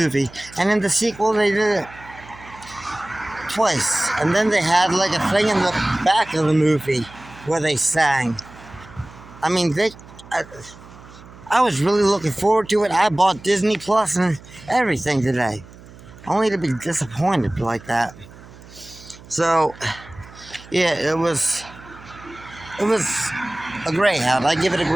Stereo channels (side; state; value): right; noise; hum, 20 dB below the sound